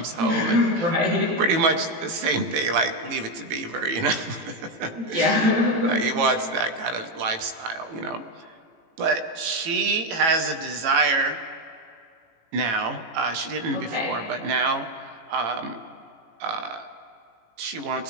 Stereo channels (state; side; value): late; left; 18 ms